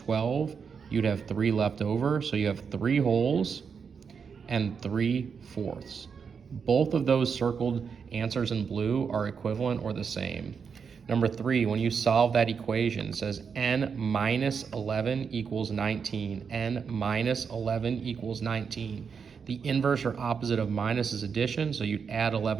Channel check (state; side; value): quieter; left; 6.2 dB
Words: You'd have 3 left over, so you have 3 wholes and 3/4. Both of those circled answers in blue are equivalent or the same. Number 3, when you solve that equation, it says n minus 11 equals 19. n minus 11 equals 19. The inverse or opposite of minus is addition, so you'd add